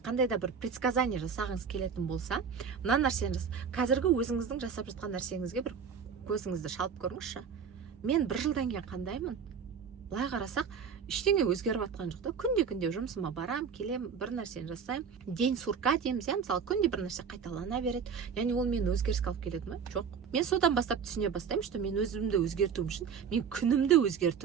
да бір предсказание жасағыңыз келетін болса, мына нәрсені қазіргі өзіңіздің жасап жатқан нәрсеңізге бір көзіңізді шалып көріңізші. Мен бір жылдан кейін қандаймын? Былай қарасақ, ештеңе өзгеріп жатқан жоқ та. Күнде жұмысыма барам, келем, бір нәрсені жасаймын. День сурка дейміз, мысалы, күнде бір нәрсе қайталана береді. Яғни ол мені өзгеріске алып келеді ме? Жоқ. Мен содан бастап түсіне бастаймын, что мен өзімді өзгертуім үшін мен күнімді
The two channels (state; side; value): quieter; left; 6.6 dB